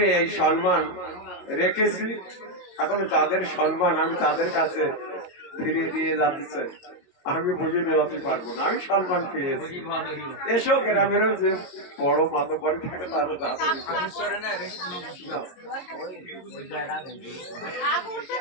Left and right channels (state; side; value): late; right; 22 ms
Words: এই সম্মান রেখেছি। এখন যাদের সম্মান আমি তাদের কাছে ফিরিয়ে দিয়ে যাতে চাই, আমি বুঝে নেওয়াতে পারবো না। আমি সম্মান পেয়েছি, এসো গ্রামেরও যে বড় মাতব্বরি থাকে তারও যাতে